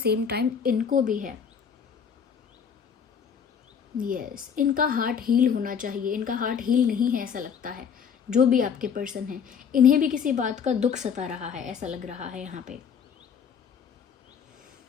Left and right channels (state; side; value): quieter; right; 7.1 dB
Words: time इनको भी है। यस, इनका हार्ट हील होना चाहिए। इनका हार्ट हील नहीं है ऐसा लगता है। जो भी आपके पर्सन हैं, इन्हें भी किसी बात का दुख सता रहा है, ऐसा लग रहा है यहाँ पे।